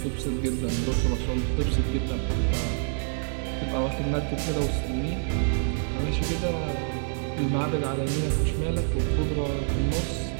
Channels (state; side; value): silent; left; 60 dB below the other